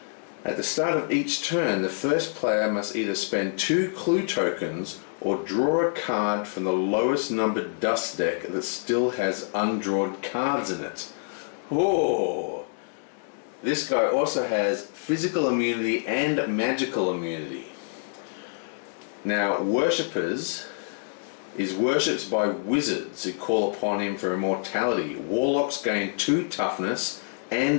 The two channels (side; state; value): right; silent; digital silence